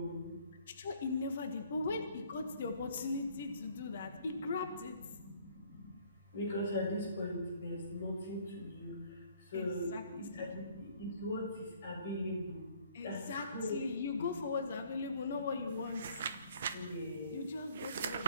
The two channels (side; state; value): both; inverted; correlation -0.59